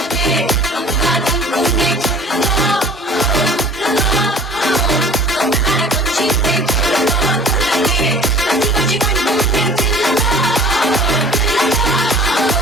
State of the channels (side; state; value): both; normal; correlation 0.47